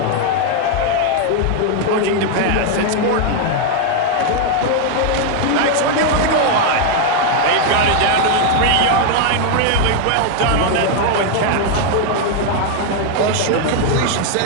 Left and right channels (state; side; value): different; both; correlation 0.01